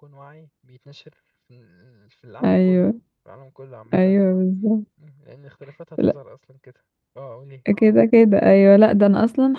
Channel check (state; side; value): identical; both; correlation 1.00